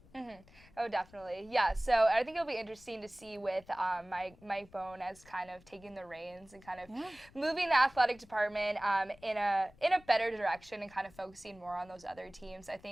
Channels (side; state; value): left; noise; rumble, 25 dB below the sound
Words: Oh, definitely. Yeah. So I think it'll be interesting to see with Mike Bohn as kind of taking the reins and kind of moving the athletic department in a better direction, and kind of focusing more on those other teams. I